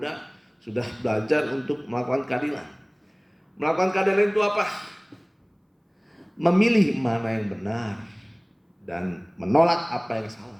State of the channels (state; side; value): identical; both; correlation 1.00